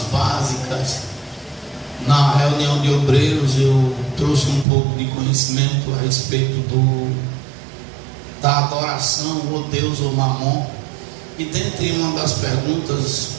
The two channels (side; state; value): left; drops out; at 4.7 s